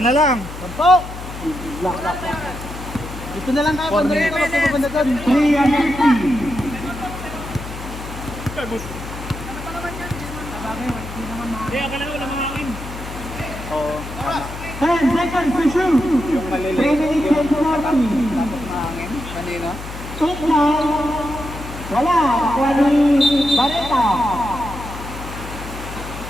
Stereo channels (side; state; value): left; noise; hum, 11 dB below the sound